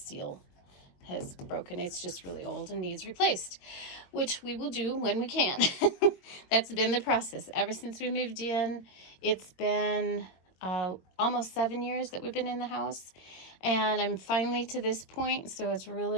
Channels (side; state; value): right; late; 22 ms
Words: has broken. It's just really old and needs replaced, which we will do when we can. That's been the process ever since we moved in. It's been almost 7 years that we've been in the house, and I'm finally to this point, so it's